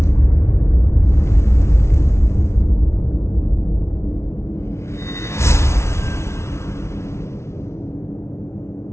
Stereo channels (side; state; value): right; late; 0.13 ms